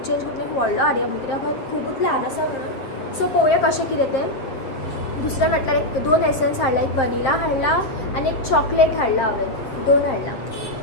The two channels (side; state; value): right; late; 7.4 ms